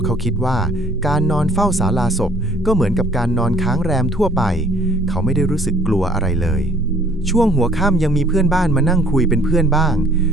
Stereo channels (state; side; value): normal; both; correlation 0.58